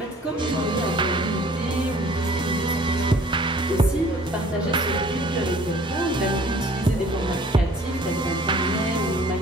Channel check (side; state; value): both; normal; correlation 0.53